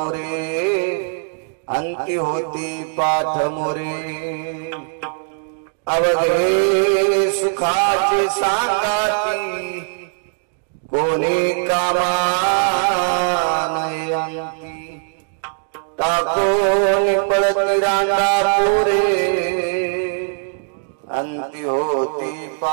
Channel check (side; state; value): left; silent; digital silence